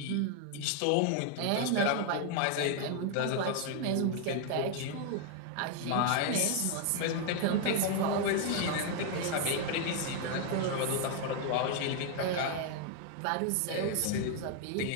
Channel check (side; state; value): both; different; correlation 0.00